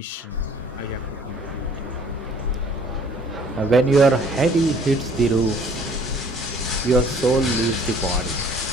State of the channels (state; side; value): normal; both; correlation 0.55